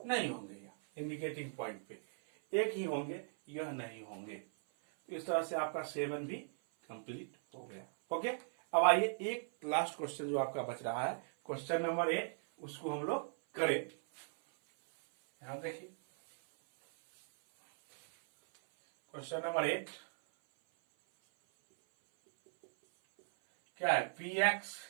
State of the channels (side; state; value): left; silent; 52 dB below the other